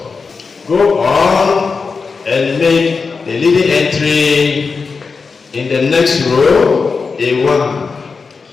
Go on and make the leading entry in the next row a 1.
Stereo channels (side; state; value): right; quieter; 4.8 dB